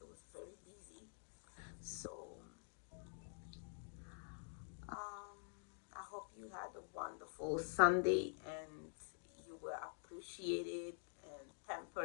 it was very busy. So, um, I hope you had a wonderful Sunday and you were appreciated and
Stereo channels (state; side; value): silent; right; digital silence